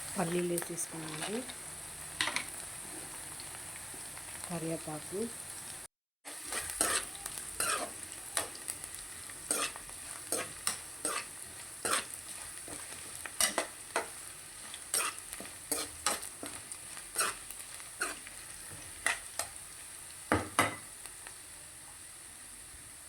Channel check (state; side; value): identical; both; correlation 1.00